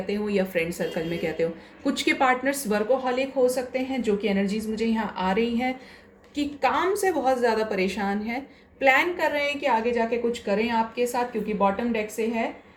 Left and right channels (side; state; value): both; identical; correlation 1.00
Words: हो, या फ्रेंड सर्कल में कहते हो। कुछ के पार्टनर्स वर्कोहॉलिक हो सकते हैं, जो कि एनर्जीज मुझे यहाँ आ रही हैं कि काम से बहुत ज़्यादा परेशान है, प्लान कर रहे हैं कि आगे जाके कुछ करें आपके साथ, क्योंकि बॉटम डेक से है